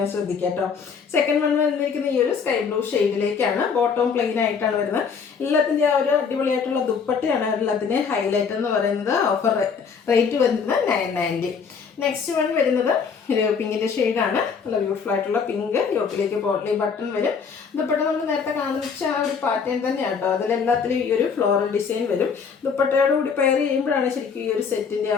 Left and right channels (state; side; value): quieter; right; 6.0 dB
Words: ശ്രദ്ധിക്കാം കേട്ടോ. സെക്കൻഡ് വൺ വന്നിരിക്കുന്ന ഈ ഒരു സ്കൈ ബ്ലൂ ഷെയ്ഡിലേക്കാണ്. ബോട്ടം പ്ലെയിൻ ആയിട്ടാണ് വരുന്നത്. എല്ലാത്തിൻ്റെ ആ ഒരു അടിപൊളിയായിട്ടുള്ള ദുപ്പട്ടയാണ് എല്ലാത്തിൻ്റെ ഹൈലൈറ്റ് എന്ന് പറയുന്നത്. ഓഫർ റേറ്റ് വരുന്നത് 990. നെക്സ്റ്റ് വൺ വരുന്നത് ഒരു പിങ്കിൻ്റെ ഷെയ്ഡാണ്. നല്ല ബ്യൂട്ടിഫുൾ ആയിട്ടുള്ള പിങ്ക്. യോക്കിലേക്ക് പോട്ട്ലി ബട്ടൺ വരും. ദുപ്പട്ട നമ്മൾ നേരത്തെ കാണിച്ച ആ ഒരു പാറ്റേൺ തന്നെയാണ് കേട്ടോ. അതിലെല്ലാത്തിലും ഈ ഒരു ഫ്ലോറൽ ഡിസൈൻ വരും. ദുപ്പട്ടയോട് കൂടി പെയർ ചെയ്യുമ്പോഴാണ് ശരിക്കും ഈ ഒരു സെറ്റിൻ്റെ